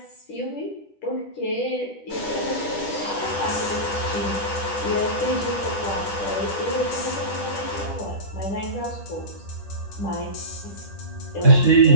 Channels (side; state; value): right; late; 10 ms